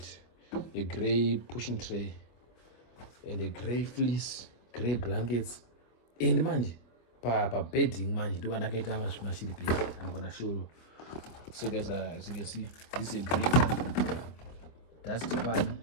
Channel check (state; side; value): late; right; 25 ms